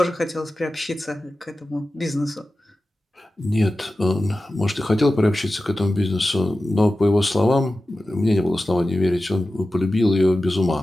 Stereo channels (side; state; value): both; normal; correlation 0.94